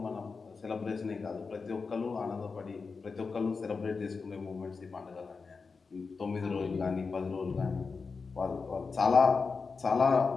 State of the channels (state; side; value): quieter; right; 4.7 dB